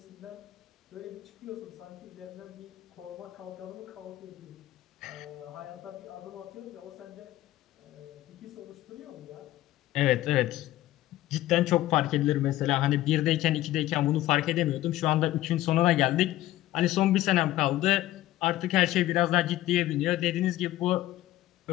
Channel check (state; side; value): quieter; right; 15.3 dB